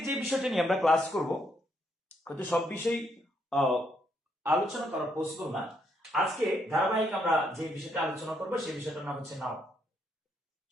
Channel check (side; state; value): both; normal; correlation 0.74